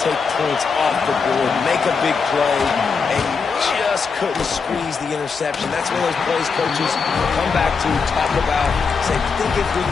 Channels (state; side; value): quieter; right; 5.3 dB